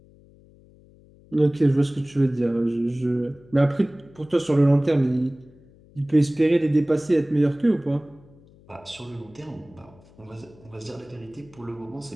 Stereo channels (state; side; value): noise; left; hum, 26 dB below the sound